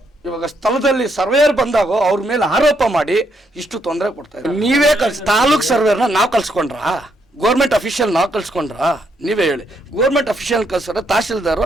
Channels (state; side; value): normal; both; correlation 0.76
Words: ಇವಾಗ ಸ್ಥಳದಲ್ಲಿ ಸರ್ವೇಯರ್ ಬಂದಾಗ ಅವ್ರ ಮೇಲೆ ಆರೋಪ ಮಾಡಿ ಇಷ್ಟು ತೊಂದರೆ ಕೊಡ್ತಾ ಇದ್ದಾರೆ. ನೀವೇ ತಾಲೂಕ್ ಸರ್ವೇರ್ನ ನಾವು ಕಳ್ಸ್ಕೊಂಡ್ರಾ? ಗೌರ್ಮೆಂಟ್ ಅಫಿಷಿಯಲ್ ನಾವು ಕಳ್ಸ್ಕೊಂಡ್ರಾ? ನೀವೇ ಹೇಳಿ. ಗೌರ್ಮೆಂಟ್ ಅಫಿಷಿಯಲ್ ಕಳ್ಸಾರೆ ತಹಶೀಲ್ದಾರು